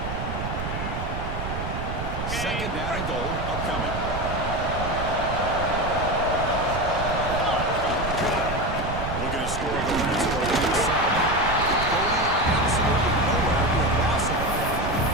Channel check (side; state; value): right; noise; rumble, 5 dB below the sound